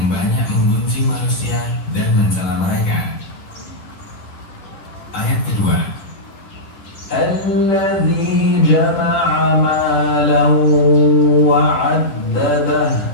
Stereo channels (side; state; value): right; late; 10 ms